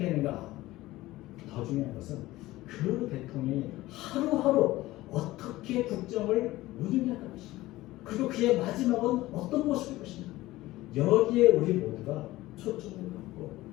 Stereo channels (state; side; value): quieter; right; 17.5 dB